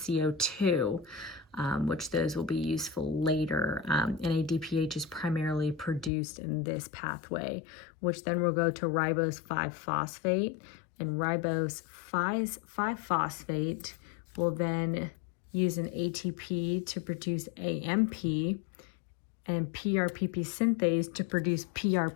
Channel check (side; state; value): right; drops out; at 6.1 s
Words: which those will be useful later. NADPH is primarily produced in this pathway, which then will go to ribose 5-phosphate, and ribose 5-phosphate will then use an ATP to produce AMP, and PRPP synthase to produce